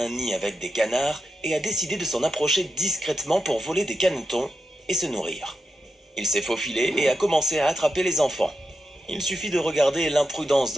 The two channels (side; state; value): both; normal; correlation 0.87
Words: nid avec des canards et a décidé de s'en approcher discrètement pour voler des canetons et se nourrir. Il s'est faufilé et a commencé à attraper les enfants. Il suffit de regarder l'imprudence